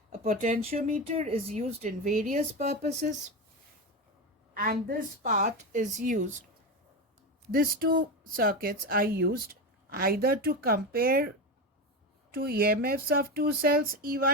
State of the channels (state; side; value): normal; both; correlation 0.18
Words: A potentiometer is used in various purposes, and this part is used. These two circuits are used either to compare two EMFs of two cells